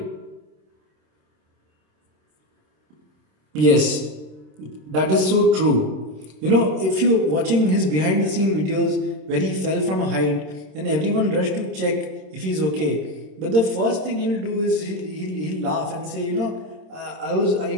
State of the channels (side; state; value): left; late; 27 ms